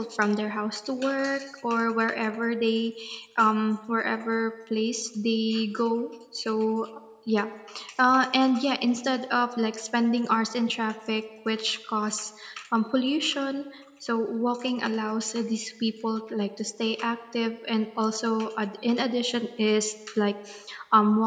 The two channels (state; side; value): identical; both; correlation 1.00